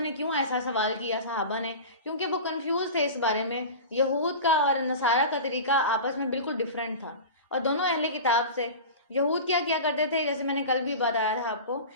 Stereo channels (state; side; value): inverted; both; correlation -0.31